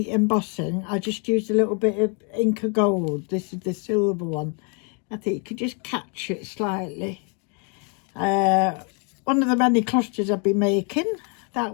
embossing, I just used a little bit of Inca Gold. This is the silver one. I think you could just catch it slightly. One of the many clusters I've been making, that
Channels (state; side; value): quieter; right; 37.5 dB